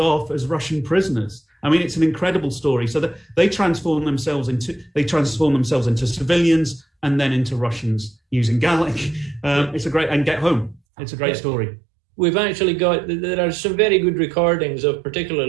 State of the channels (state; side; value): drops out; left; at 10.8 s